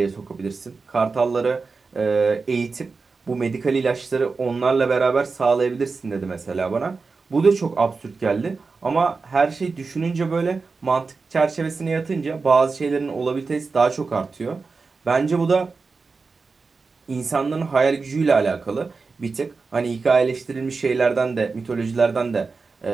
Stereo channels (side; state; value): left; quieter; 4.4 dB